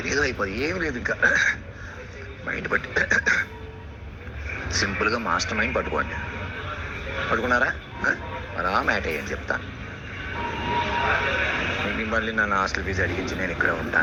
ఏదో అయిపోతుంది, ఏమి లేదు. ఇంకా మైండ్ బట్టి సింపుల్గా మాస్టర్ మైండ్ పట్టుకున్నారా? అలా మ్యాట్ అయ్యని చెప్తాను. మళ్ళీ నన్ను హాస్టల్ ఫీజు అడిగించి నేను ఇక్కడ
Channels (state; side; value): identical; both; correlation 1.00